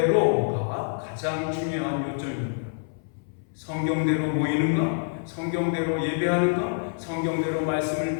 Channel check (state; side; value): silent; right; 61 dB below the other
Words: 가장 중요한 요점입니다. 성경대로 모이는가? 성경대로 예배하는가? 성경대로